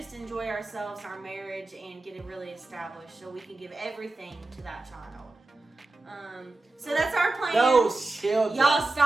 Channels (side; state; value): left; quieter; 3.1 dB